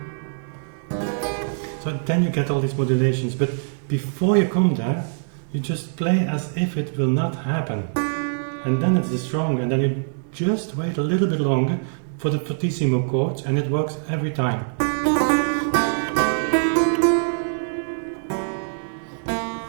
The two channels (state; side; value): silent; left; digital silence